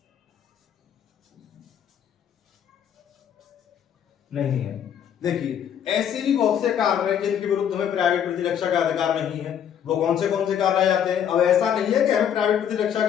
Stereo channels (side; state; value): right; quieter; 9.0 dB